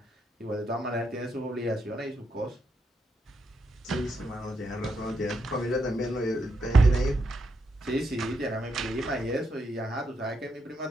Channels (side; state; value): both; normal; correlation 0.81